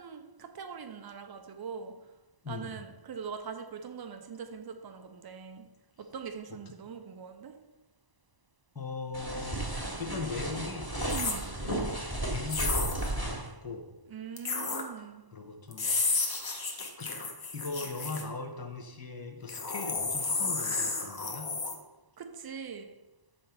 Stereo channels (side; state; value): left; late; 1.0 ms